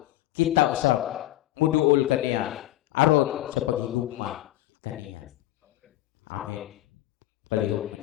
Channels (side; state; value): right; quieter; 15.6 dB